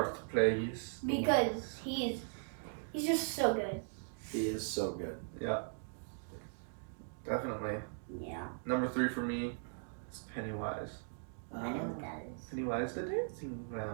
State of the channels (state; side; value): silent; left; digital silence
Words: plays. because he's just so good. He is so good. Yeah. Definitely. Yeah. Number 3 for me is Pennywise. I know what that is. Pennywise the dancing